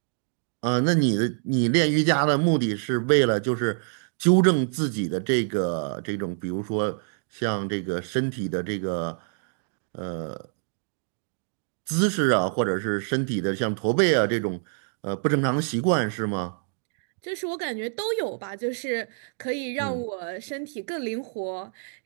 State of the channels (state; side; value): silent; left; digital silence